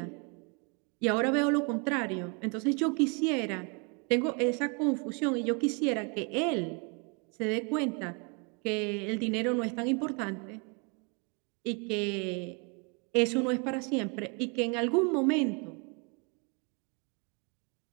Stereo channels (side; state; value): left; quieter; 34.0 dB